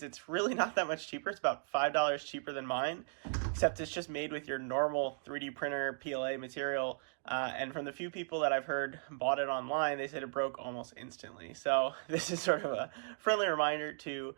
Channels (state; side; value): silent; left; digital silence